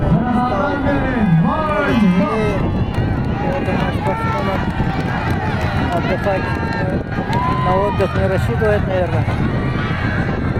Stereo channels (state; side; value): identical; both; correlation 1.00